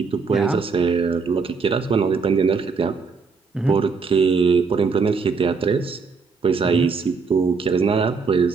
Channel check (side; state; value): left; quieter; 4.9 dB